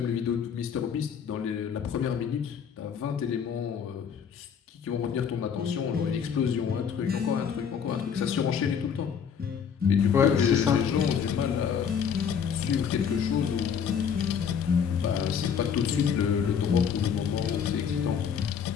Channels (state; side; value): quieter; right; 7.3 dB